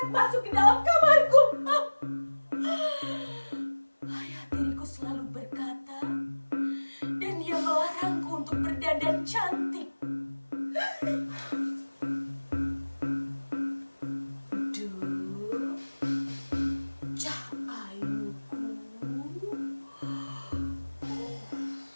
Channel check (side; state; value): both; inverted; correlation -1.00